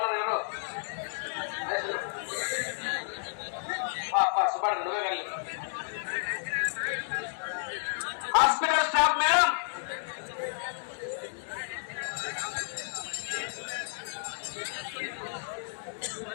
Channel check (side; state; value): right; silent; 57 dB below the other